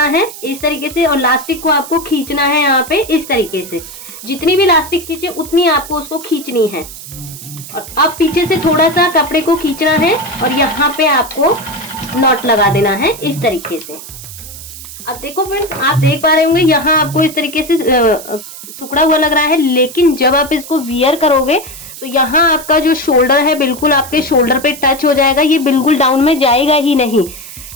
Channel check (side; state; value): right; noise; hiss, 14 dB below the sound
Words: है इस तरीके से, और इलास्टिक को आपको खींचना है यहाँ पे इस तरीके से। जितनी भी इलास्टिक खींचे उतनी आपको उसको खींचनी है। और अब पीछे से थोड़ा सा कपड़े को खींचना है और यहाँ पे आपको नॉट लगा देना है इस तरीके से। अब देखो फ्रेंड्स, आप देख पा रहे होंगे यहाँ आपको इस तरीके से सुकड़ा हुआ लग रहा है, लेकिन जब आप इसको वियर करोगे तो यहाँ आपका जो शोल्डर है बिल्कुल आपके शोल्डर पे टच हो जाएगा, ये बिल्कुल डाउन में जाएगा ही नहीं।